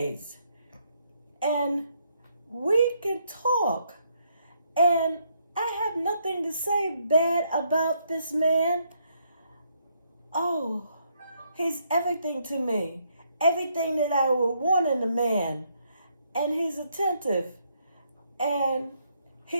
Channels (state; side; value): inverted; both; correlation -0.73